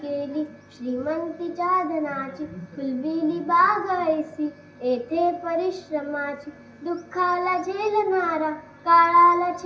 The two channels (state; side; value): identical; both; correlation 1.00